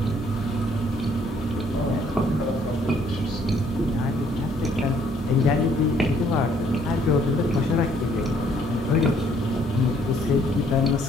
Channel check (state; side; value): normal; both; correlation 0.64